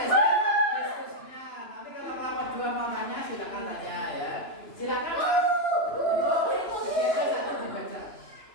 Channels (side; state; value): right; late; 2.9 ms